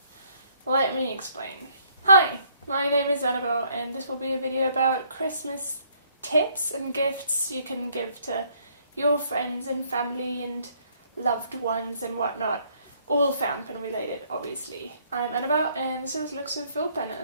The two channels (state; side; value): inverted; both; correlation -0.66